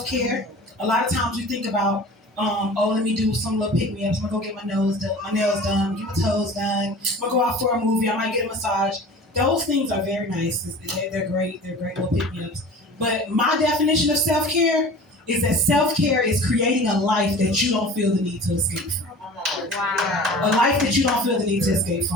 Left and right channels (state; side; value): normal; both; correlation 0.40